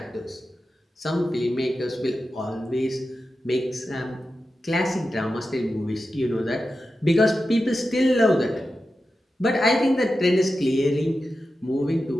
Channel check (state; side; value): normal; both; correlation 0.91